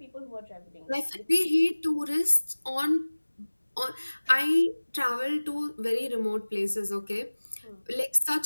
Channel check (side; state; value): both; inverted; correlation -1.00